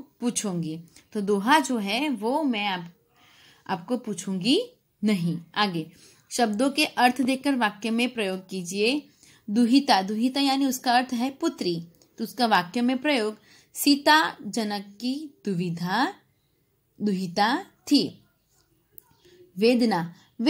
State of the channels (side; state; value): both; identical; correlation 1.00